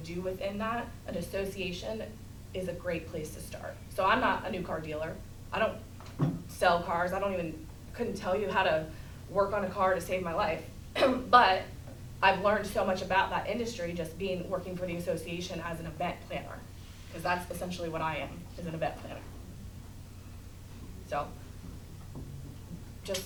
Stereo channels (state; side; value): identical; both; correlation 1.00